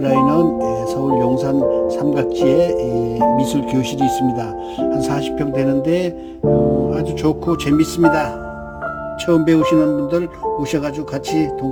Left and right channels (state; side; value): identical; both; correlation 1.00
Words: 서울 용산 삼각지에 미술교실이 있습니다. 한 40평 되는데 아주 좋고 재밌습니다. 처음 배우시는 분들 오셔가지고 같이